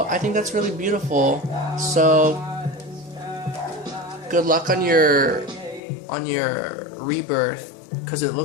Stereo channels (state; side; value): drops out; right; at 5.8 s